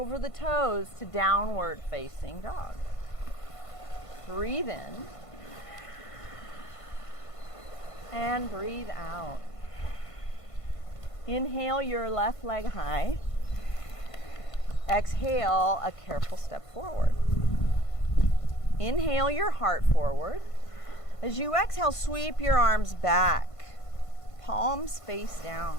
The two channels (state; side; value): late; right; 1.5 ms